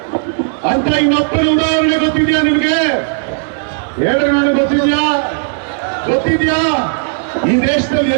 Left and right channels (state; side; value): silent; left; digital silence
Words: ಅಂತ ಇನ್ನೊಬ್ಬನ ಉದಾಹರಣೆ ಗೊತ್ತಿದೆಯಾ ನಿಮ್ಗೆ? ಹೇಳ್ರಿ, ನನಗೆ ಗೊತ್ತಿದ್ಯಾ? ಗೊತ್ತಿದ್ಯಾ? ಈ ದೇಶದಲ್ಲಿ